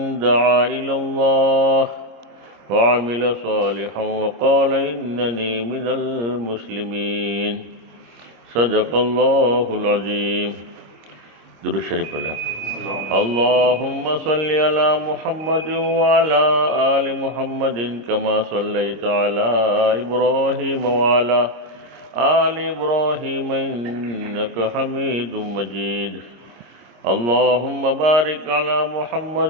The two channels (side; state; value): left; late; 26 ms